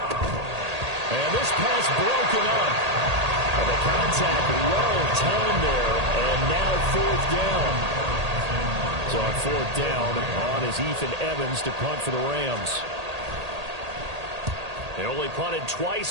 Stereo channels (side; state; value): left; late; 1.8 ms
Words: And this pass broken up. And the contact well timed there. And now 4th down. So on 4th down, on is Ethan Evans to punt for the Rams. They only punted